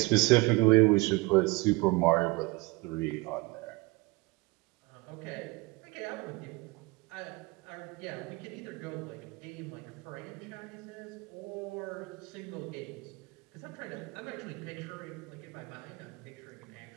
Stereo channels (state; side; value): quieter; left; 25.1 dB